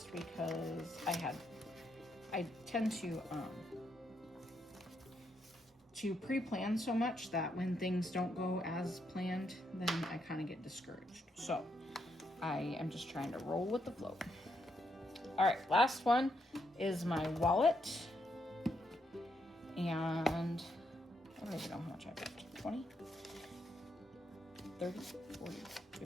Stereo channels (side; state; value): both; normal; correlation 0.78